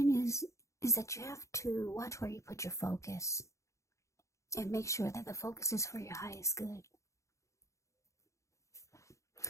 is that you have to watch where you put your focus and make sure that the focus is for your highest good.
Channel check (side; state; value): right; late; 0.15 ms